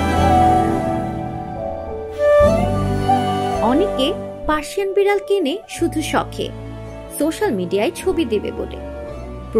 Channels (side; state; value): both; identical; correlation 1.00